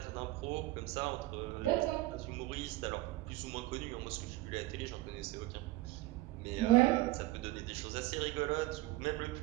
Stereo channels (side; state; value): left; quieter; 18.4 dB